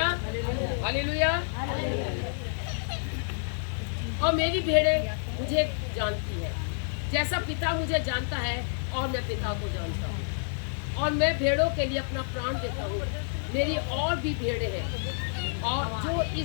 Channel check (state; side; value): silent; right; digital silence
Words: hallelujah. और मेरी भेड़ें मुझे जानती है, जैसा पिता मुझे जानता है और मैं पिता को जानता हूँ, और मैं भेड़ों के लिए अपना प्राण देता हूँ। मेरी और भी भेड़ें हैं और जो